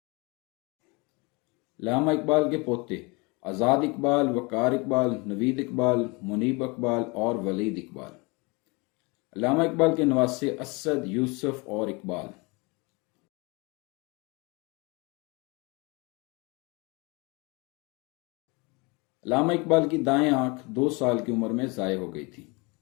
علامہ اقبال کے پوتے آزاد اقبال، وقار اقبال، نوید اقبال، منیب اقبال اور ولید اقبال۔ علامہ اقبال کے نواسے اسد، یوسف اور اقبال۔ علامہ اقبال کی دائیں آنکھ 2 سال کی عمر میں ضائع ہو گئی تھی۔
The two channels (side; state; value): right; quieter; 28.0 dB